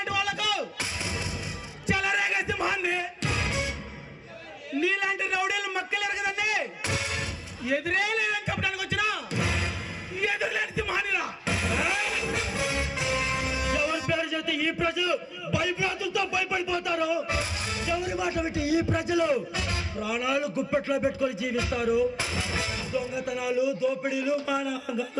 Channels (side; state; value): both; identical; correlation 1.00